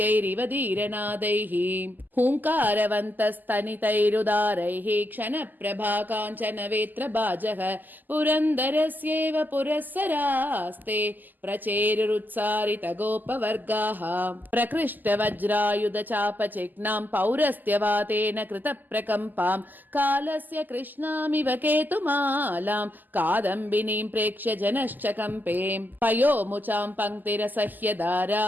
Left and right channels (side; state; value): left; late; 0.086 ms